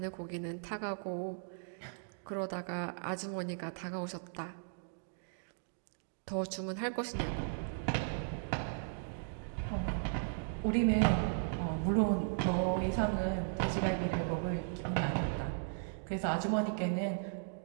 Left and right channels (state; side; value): silent; left; digital silence